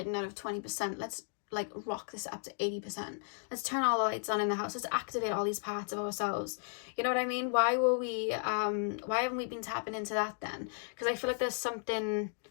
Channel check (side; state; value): right; silent; 55 dB below the other